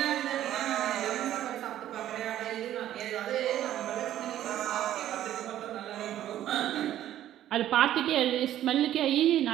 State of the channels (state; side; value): quieter; left; 12.3 dB